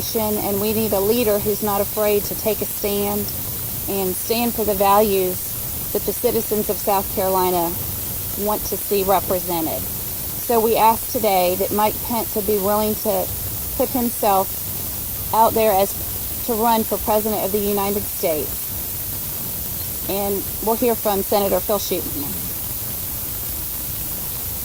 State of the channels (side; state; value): both; identical; correlation 1.00